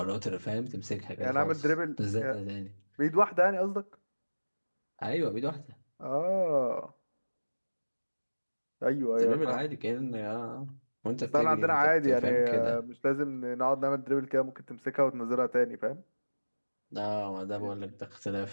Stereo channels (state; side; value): inverted; both; correlation -1.00